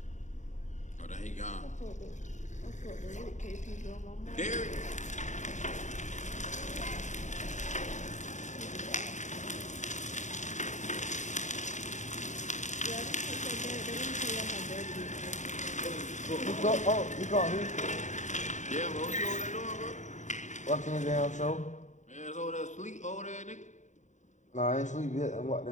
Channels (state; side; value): late; right; 0.35 ms